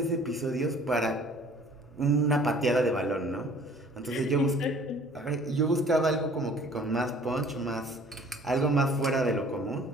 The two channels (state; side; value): normal; both; correlation 0.52